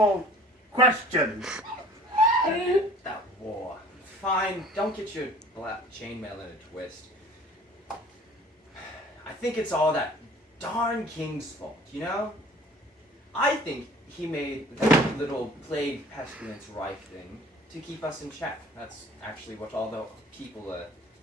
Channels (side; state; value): both; normal; correlation 0.49